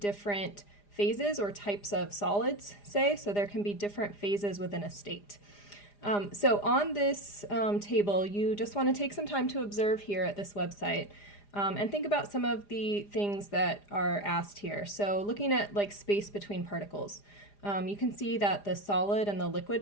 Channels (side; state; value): right; late; 4.9 ms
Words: phases or types of solids, so there can be different phases within a state. So on this table, you just want to take some time to observe here at this website and think about some of the things that are asked here. So looking at like space between particles, you can see that the solid and the